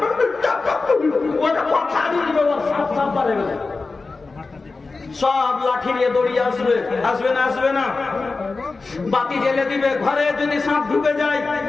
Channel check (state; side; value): quieter; right; 3.9 dB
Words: সব লাঠি নিয়ে দৌড়িয়ে আসবে না? বাতি জেলে দিবে। ঘরে যদি সাপ ঢুকে যায়,